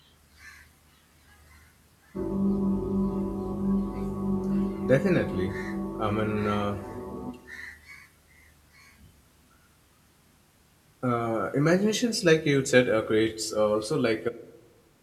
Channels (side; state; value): both; identical; correlation 1.00